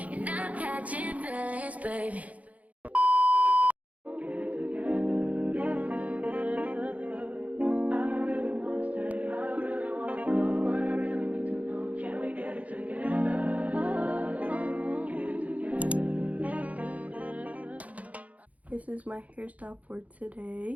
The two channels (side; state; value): left; late; 0.070 ms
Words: I'm catching feelings, baby. This is my hairstyle for